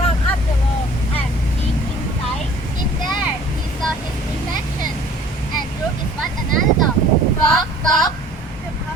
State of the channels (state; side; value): normal; both; correlation 0.51